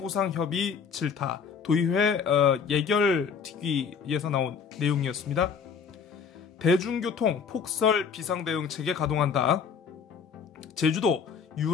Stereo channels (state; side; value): quieter; right; 6.4 dB